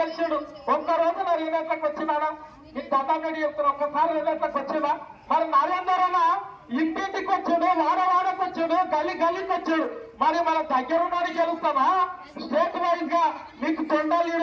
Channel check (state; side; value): identical; both; correlation 1.00